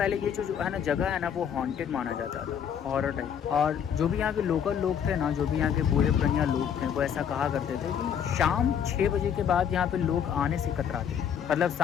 ये जो है ना जगह है ना, वो हॉन्टेड माना जाता था, हॉरर टाइप। और जो भी यहाँ के लोकल लोग थे ना, जो भी यहाँ के बूढ़े पुरानिया लोग थे, वो ऐसा कहा करते थे कि शाम 6 बजे के बाद यहाँ पे लोग आने से कतराते थे। मतलब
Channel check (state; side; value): quieter; right; 8.3 dB